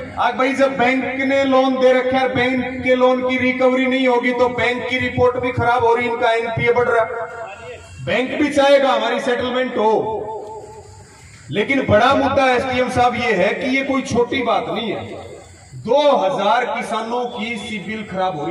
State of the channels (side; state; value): both; identical; correlation 1.00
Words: आज भाई, जब बैंक ने लोन दे रखा है, बैंक के लोन की रिकवरी नहीं होगी तो बैंक की रिपोर्ट भी खराब हो रही, इनका एनपीए बढ़ रहा। बैंक भी चाहेगा हमारी सेटलमेंट हो, लेकिन बड़ा मुद्दा एसडीएम साहब ये है कि ये कोई छोटी बात नहीं है। 2000 किसानों की सिविल खराब हो